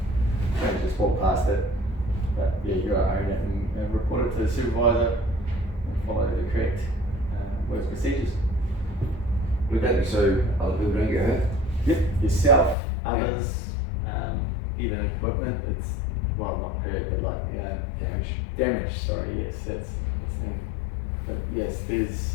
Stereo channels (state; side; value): drops out; right; at 12.8 s